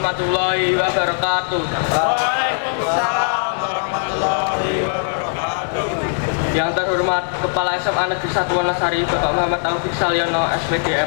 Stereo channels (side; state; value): right; silent; 64 dB below the other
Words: warahmatullahi wabarakatuh. Waalaikumsalam warahmatullahi wabarakatuh. Yang terhormat Kepala SMA Negeri 1 Wonosari Bapak Muhammad Taufik Salyono SPD